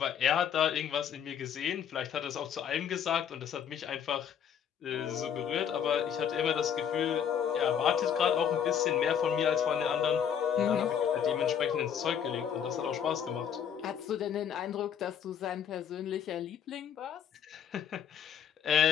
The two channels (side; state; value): right; quieter; 8.4 dB